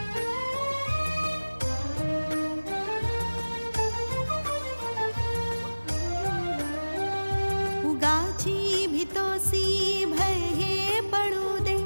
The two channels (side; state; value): both; inverted; correlation -1.00